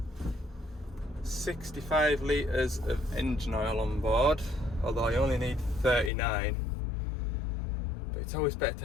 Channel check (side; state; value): right; drops out; at 6.1 s